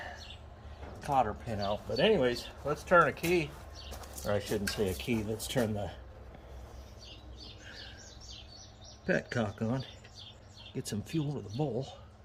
cotter pin out. But anyways, let's turn a key. Or I shouldn't say a key. Let's turn the petcock on. Get some fuel to the bowl.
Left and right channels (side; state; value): both; identical; correlation 1.00